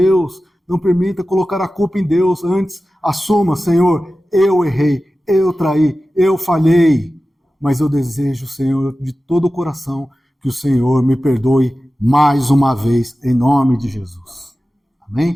não permita colocar a culpa em Deus. Antes, assuma, Senhor, eu errei, eu traí, eu falhei, mas eu desejo, Senhor, de todo o coração, que o Senhor me perdoe mais uma vez, em nome de Jesus.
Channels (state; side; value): normal; both; correlation 0.95